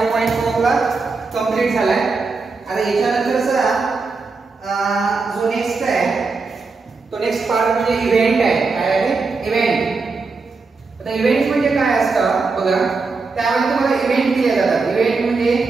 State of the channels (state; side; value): quieter; left; 4.2 dB